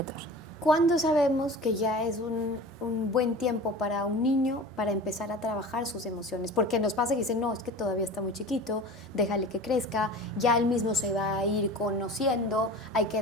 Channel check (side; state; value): both; normal; correlation 0.36